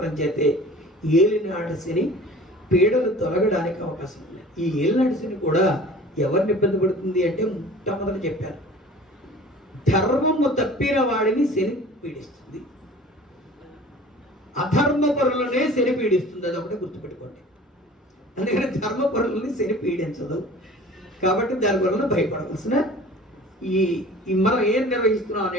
చేతే ఏలినాటి శని పీడలు తొలగడానికి అవకాశం ఉంది. ఈ ఏలినాటి శని కూడా ఎవరిని ఇబ్బంది పడుతుంది అంటే మొట్టమొదట చెప్పారు, ధర్మము తప్పిన వాడిని శని పీడిస్తుంది, అధర్మపరులనే శని పీడిస్తుంది. అది ఒకటి గుర్తుపెట్టుకోండి. అందుకని ధర్మపరులని శని పీడించదు. కాబట్టి దాని వలన భయపడవలసిన ఈ మనం ఏం నిర్వహిస్తున్నాం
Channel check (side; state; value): both; normal; correlation 0.44